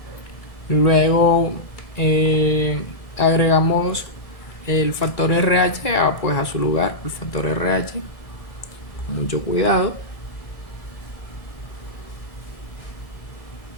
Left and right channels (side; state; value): right; late; 1.6 ms